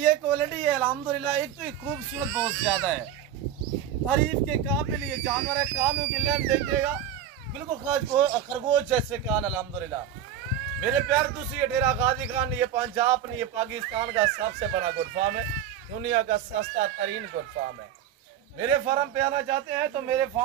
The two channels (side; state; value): left; quieter; 9.8 dB